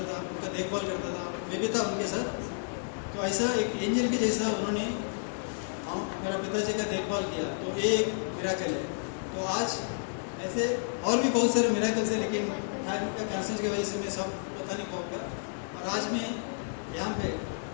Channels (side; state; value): right; silent; digital silence